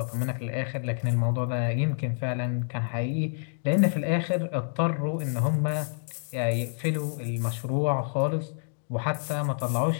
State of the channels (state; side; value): silent; right; digital silence